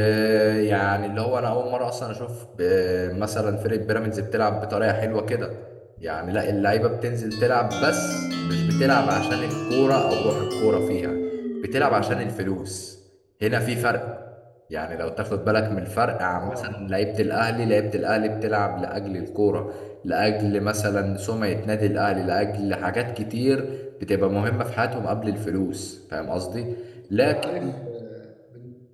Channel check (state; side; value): identical; both; correlation 1.00